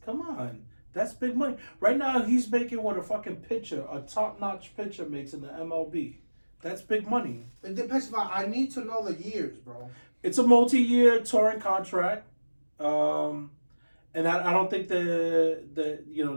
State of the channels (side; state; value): both; inverted; correlation -1.00